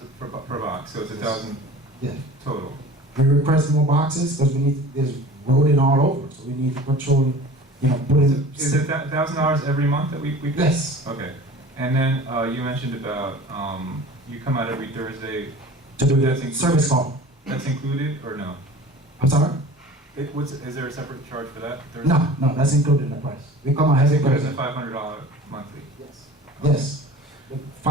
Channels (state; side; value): normal; both; correlation 0.41